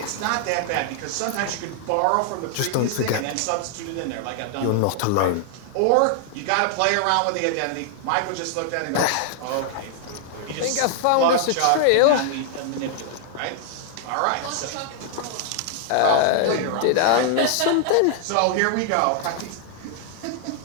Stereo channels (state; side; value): different; both; correlation 0.00